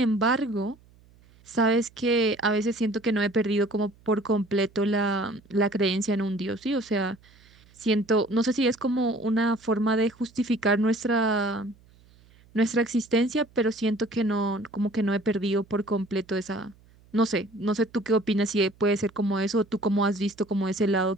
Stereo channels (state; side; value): noise; right; hum, 28 dB below the sound